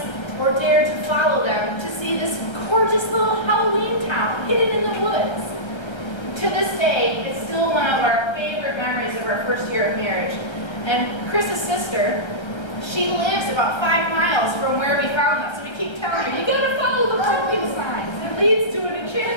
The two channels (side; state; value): right; late; 1.3 ms